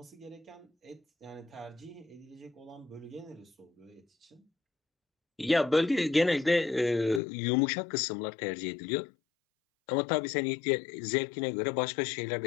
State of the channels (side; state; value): right; drops out; at 7.2 s